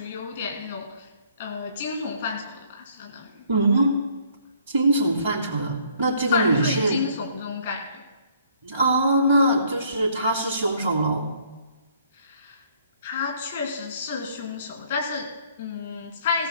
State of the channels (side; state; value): both; inverted; correlation -0.62